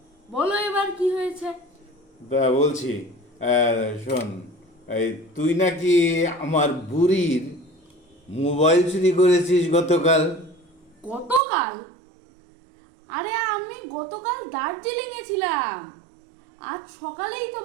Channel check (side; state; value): left; drops out; at 11.4 s